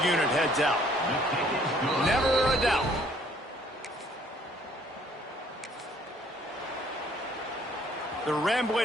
unit heads out. Never a doubt. The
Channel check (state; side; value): normal; both; correlation 0.61